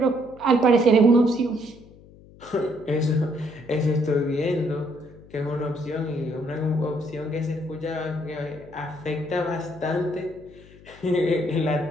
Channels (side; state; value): left; noise; hum, 22 dB below the sound